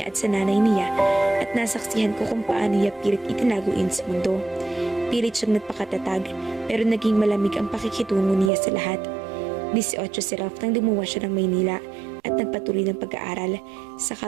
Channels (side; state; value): left; drops out; at 8.5 s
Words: at sa nanay niya at nasaksihan ko kung paano niya pilit itinago iyon sa mundo. Pilit siyang nagpakatatag pero naging malamig ang pakikitungo niya sa lahat. 18 si Ralph nang lumuwas siya ng Maynila at nagpatuloy ng pag-aaral.